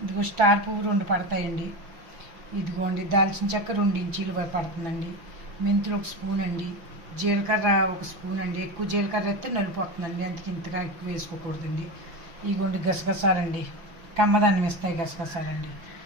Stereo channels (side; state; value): left; late; 6.1 ms